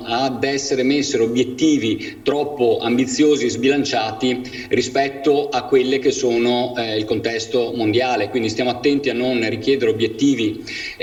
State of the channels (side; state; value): both; identical; correlation 1.00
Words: ad essere messi obiettivi troppo ambiziosi e sbilanciati rispetto a quelle che sono il contesto mondiale. Quindi stiamo attenti a non richiedere obiettivi